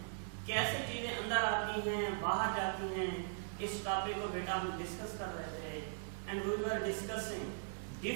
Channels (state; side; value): silent; left; 51 dB below the other